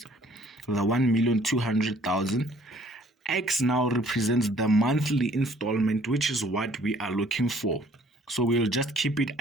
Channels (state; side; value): normal; both; correlation 0.58